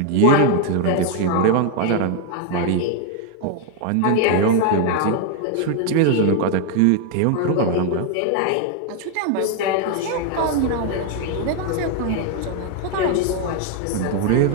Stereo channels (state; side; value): different; both; correlation 0.00